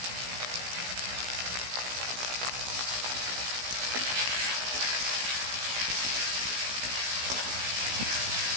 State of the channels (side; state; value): left; late; 16 ms